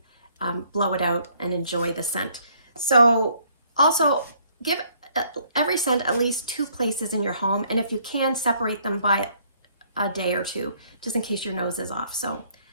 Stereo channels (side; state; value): both; inverted; correlation -0.64